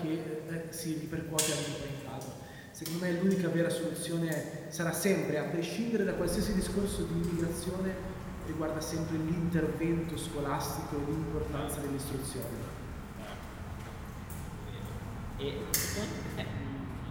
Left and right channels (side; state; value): both; identical; correlation 1.00